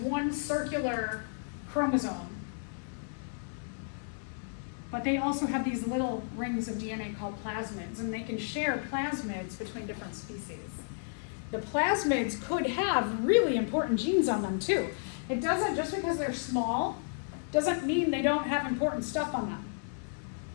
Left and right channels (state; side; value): silent; right; 56 dB below the other